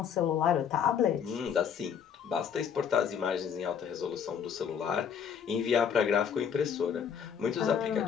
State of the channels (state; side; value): quieter; right; 7.7 dB